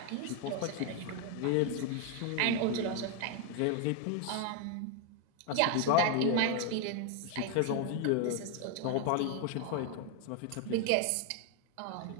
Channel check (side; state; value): both; different; correlation 0.01